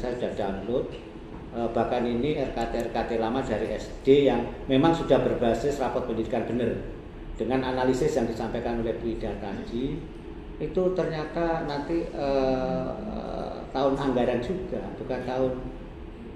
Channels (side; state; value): both; identical; correlation 1.00